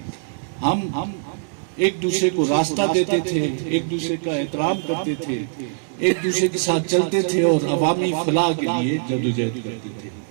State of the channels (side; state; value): left; silent; digital silence